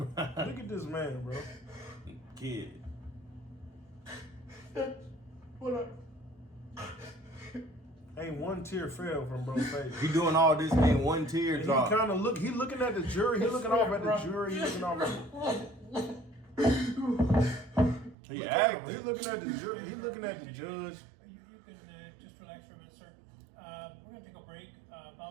at this man, bro. Kid. What Ain't one tear fell from bro's face. He doing all this, ain't one tear And drop. he kind of look. He looking at the jury. He looking off at the jury. He looking off at. He Look at him. He looking at the jury. He looking at the judge. You can just relax for a minute, sir. We're going to take a break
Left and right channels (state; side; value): drops out; left; at 18.2 s